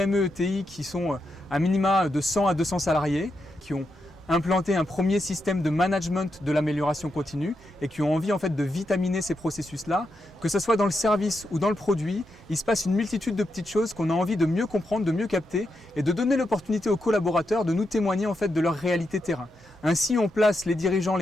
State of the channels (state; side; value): normal; both; correlation 0.84